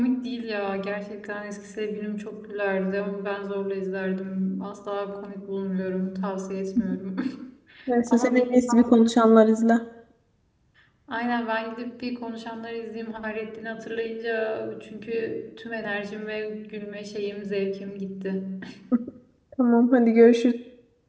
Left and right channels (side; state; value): both; identical; correlation 1.00